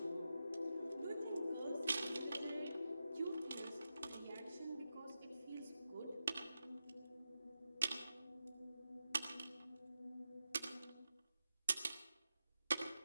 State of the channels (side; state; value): both; inverted; correlation -0.90